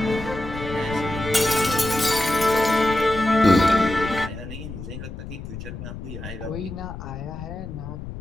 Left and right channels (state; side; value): noise; left; rumble, 10 dB below the sound